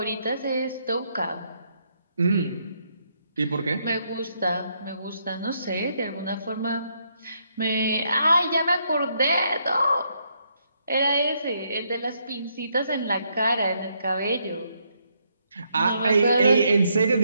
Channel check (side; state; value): both; inverted; correlation -0.75